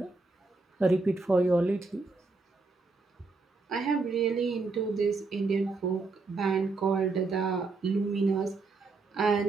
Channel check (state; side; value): quieter; left; 3.8 dB